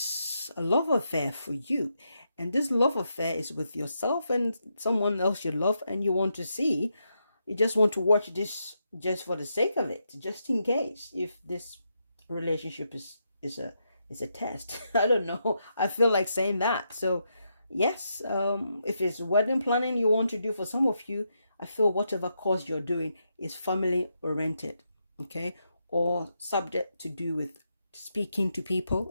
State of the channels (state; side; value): inverted; both; correlation -0.82